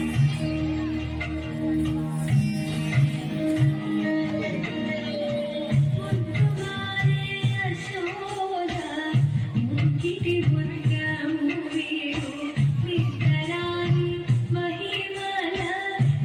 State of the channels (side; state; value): both; identical; correlation 1.00